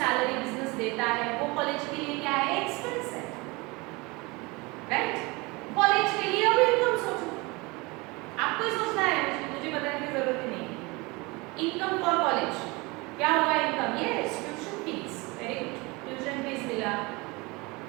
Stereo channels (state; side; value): quieter; left; 25.2 dB